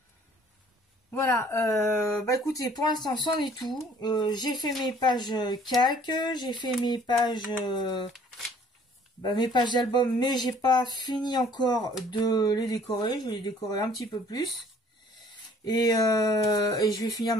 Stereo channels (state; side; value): normal; both; correlation 0.56